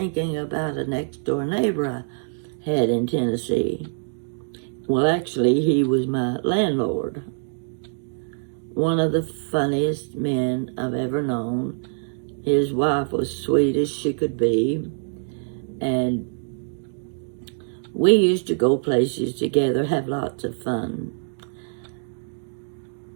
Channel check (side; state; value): left; silent; digital silence